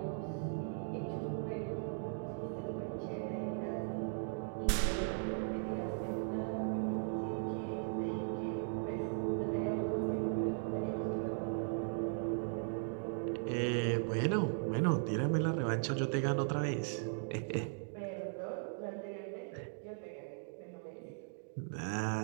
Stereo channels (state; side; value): silent; left; digital silence